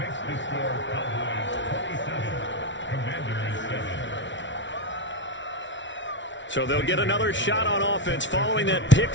So they'll get another shot on offense following that pick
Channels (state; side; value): late; right; 0.54 ms